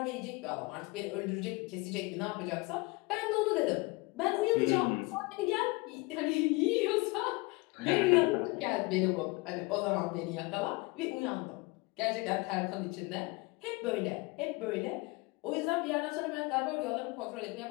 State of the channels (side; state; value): right; quieter; 24.7 dB